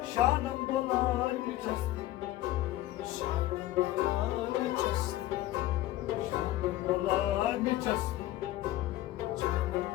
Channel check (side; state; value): right; quieter; 15.5 dB